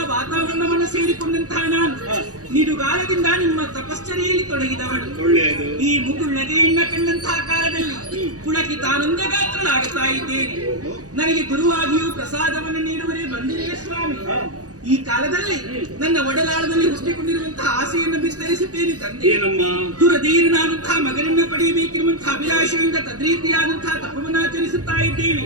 ವಾತಾವರಣವನ್ನು ಸೇರಿಕೊಂಡಂತಹ ನಾನು ನಿಡುಗಾಲದಿಂದ ನಿಮ್ಮ ತಪಶ್ಚರ್ಯೆಯಲ್ಲಿ ತೊಡಗಿದವಳು. ಒಳ್ಳೆಯದು. ಈ ಮುಗುಳ್ನಗೆಯನ್ನ ಕಂಡಂತಹ ಕಾಲದಲ್ಲಿ ಪುಳಕಿತಾನಂದ ಗಾತ್ರನಾಗುತ್ತಾ ಇದ್ದೇನೆ. ನನಗೆ ಗುರುವಾಗಿಯೂ ಪ್ರಸಾದವನ್ನು ನೀಡುವರೇ ಬಂದಿರೇ ಸ್ವಾಮಿ. ಈ ಕಾಲದಲ್ಲಿ ನನ್ನ ಒಡಲಾಳದಲ್ಲಿ ಹುಟ್ಟಿಕೊಂಡಿರುವಂತಹ ಆಸೆಯನ್ನು ವಿಸ್ತರಿಸುತ್ತೇನೆ ತಂದೆ. ಏನಮ್ಮ? ದುರಧೀರನಾದಂತಹ ಮಗನನ್ನ ಪಡೆಯಬೇಕಿರುವಂತಹ ಅಭಿಲಾಷೆಯಿಂದ ತದ್ರೀತಿಯಾದಂತಹ ತಪವನ್ನಾಚರಿಸುತ್ತಾ ಇದ್ದೇನೆ.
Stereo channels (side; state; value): left; late; 0.67 ms